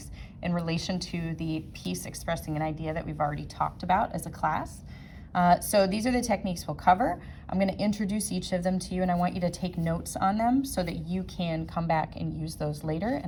in relation to the piece expressing an idea that we've already talked about as a class. So these are the techniques we'll cover. I'm going to introduce each of them to you and I want you to take notes on them so that you can come back and use those later,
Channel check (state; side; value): identical; both; correlation 1.00